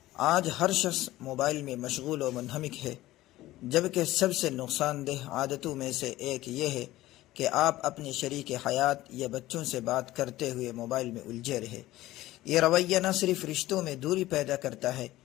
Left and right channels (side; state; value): right; quieter; 16.4 dB